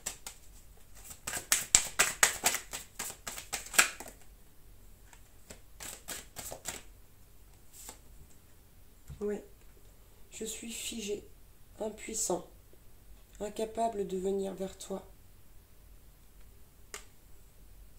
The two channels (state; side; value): identical; both; correlation 1.00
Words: suis figé, impuissant, incapable de venir vers toi.